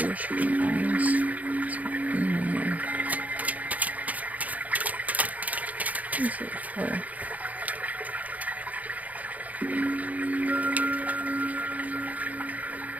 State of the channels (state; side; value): late; left; 0.075 ms